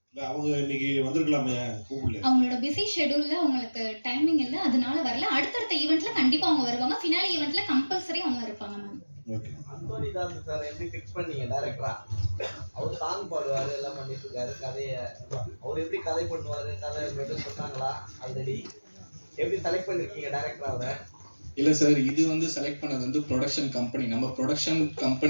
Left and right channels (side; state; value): both; inverted; correlation -1.00